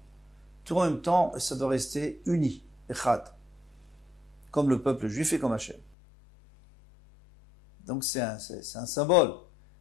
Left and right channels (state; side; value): drops out; right; at 6.0 s